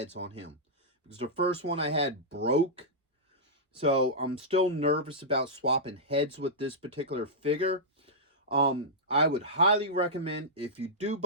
on him, because the first one I had broke. So I'm still nervous about swapping heads with this particular figure. I would highly recommend, if you do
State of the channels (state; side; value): normal; both; correlation -0.11